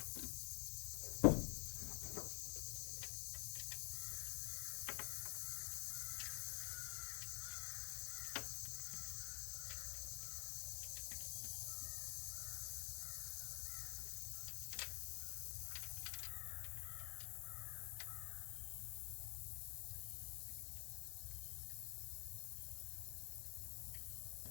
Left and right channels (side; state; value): right; quieter; 39.7 dB